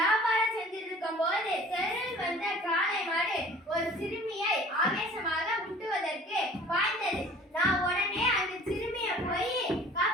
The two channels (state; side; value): normal; both; correlation 0.48